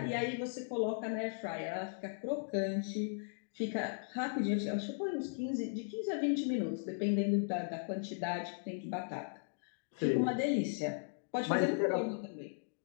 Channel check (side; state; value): right; silent; digital silence